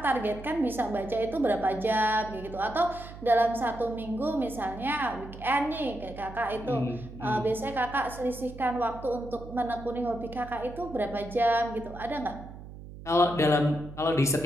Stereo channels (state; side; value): noise; right; hum, 14 dB below the sound